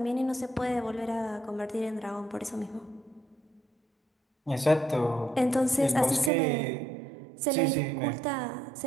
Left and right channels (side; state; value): left; drops out; at 6.3 s